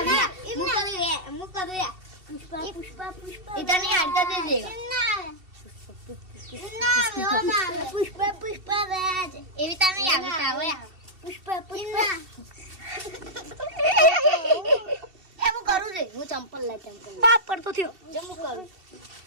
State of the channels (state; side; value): late; left; 2.7 ms